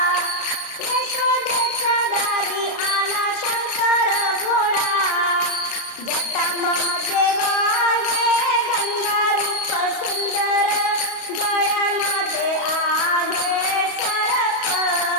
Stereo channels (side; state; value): right; late; 35 ms